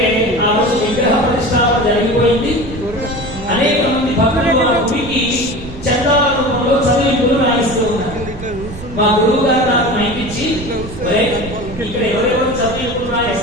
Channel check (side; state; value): right; noise; rumble, 13 dB below the sound